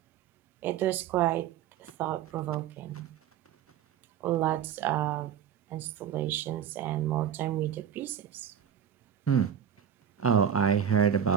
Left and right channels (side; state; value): left; quieter; 8.9 dB